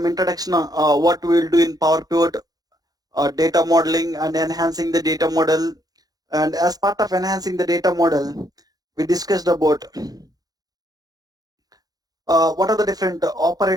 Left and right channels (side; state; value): left; late; 0.19 ms